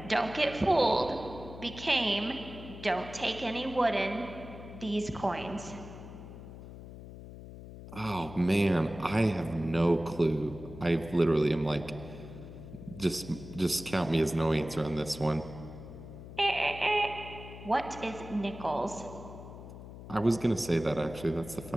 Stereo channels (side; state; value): left; noise; hum, 13 dB below the sound